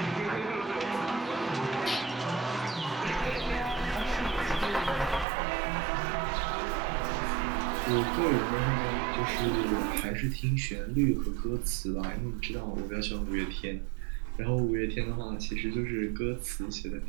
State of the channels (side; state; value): left; drops out; at 5.2 s